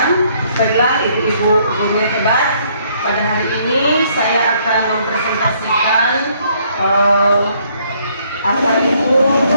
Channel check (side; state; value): both; inverted; correlation -0.66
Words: Baiklah ibu-ibu guru hebat. Pada hari ini saya akan mempresentasikan apa itu